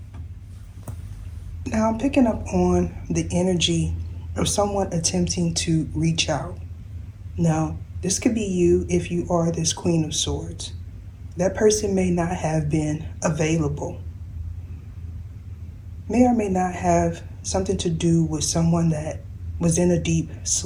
Now I'm picking up on the energy of someone attempting to reach out. Now, this could be you if you are this Queen of Swords. That person may not have been available. May or may not have something to do with someone that was in a deep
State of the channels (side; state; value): both; identical; correlation 1.00